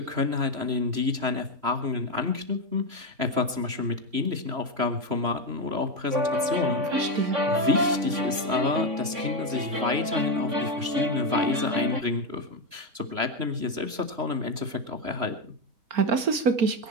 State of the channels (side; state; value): left; late; 3.0 ms